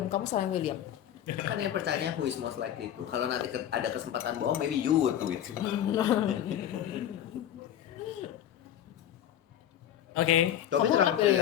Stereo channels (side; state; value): right; quieter; 10.9 dB